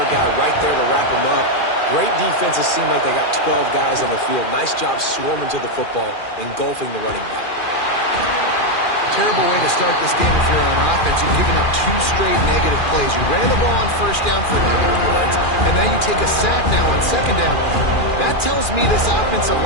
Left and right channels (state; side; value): late; right; 2.4 ms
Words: guy right there to wrap him up. Great defenses seem like they got 12 guys on the field. Nice job swarming to the football, engulfing the running back. Terrible way to start this game if you're on offense. You've given up 2 straight negative plays. You ran the ball on first down for negative yards, and now you take a sack now on second down. That tells me this offensive